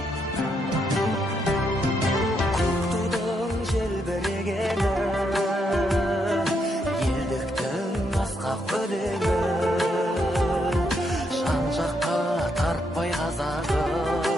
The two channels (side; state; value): both; normal; correlation 0.78